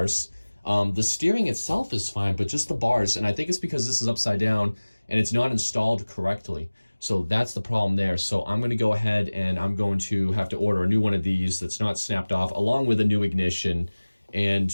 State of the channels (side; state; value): both; inverted; correlation -1.00